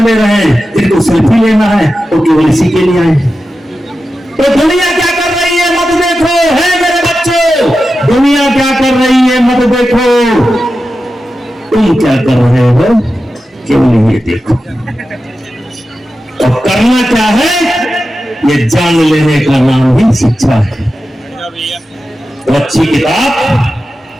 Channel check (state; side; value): normal; both; correlation 0.92